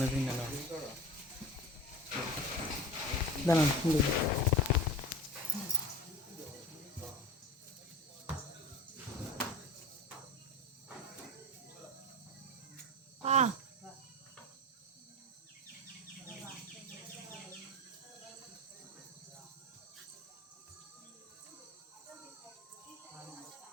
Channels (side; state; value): both; normal; correlation 0.30